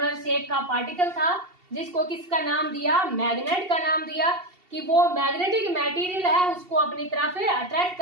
शेप का पार्टिकल था जिसको किसका नाम दिया, मैग्नेट का नाम दिया। कि वो मैग्नेटिक मटेरियल है उसको अपनी तरफ अट्रैक्ट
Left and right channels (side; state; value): left; late; 2.7 ms